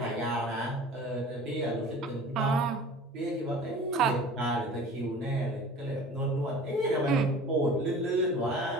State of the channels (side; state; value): both; normal; correlation 0.42